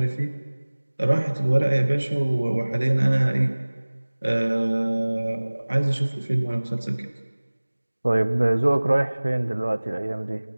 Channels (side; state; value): both; inverted; correlation -1.00